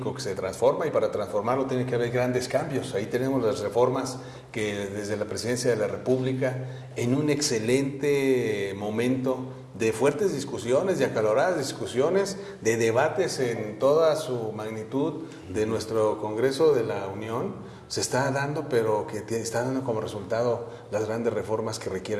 que se transforma y para transformarlo tiene que haber grandes cambios. Ahí tenemos las reformas que desde la Presidencia de la República, en un excelente momento de fuertes discusiones, de acaloradas discusiones, de debates en toda su magnitud de nuestro Congreso de la Unión, se está dando, pero que está dando como resultado las grandes reformas que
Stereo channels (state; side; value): identical; both; correlation 1.00